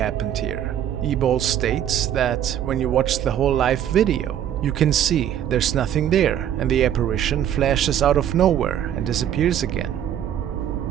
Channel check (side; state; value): left; quieter; 10.3 dB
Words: here?" eBall states that when you watch the whole live video, you can see there's nothing there and the apparition flashes out of nowhere and disappears again.